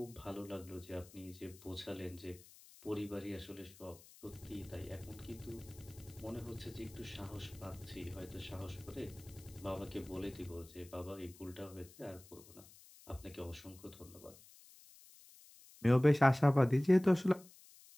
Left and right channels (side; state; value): left; noise; hiss, 22 dB below the sound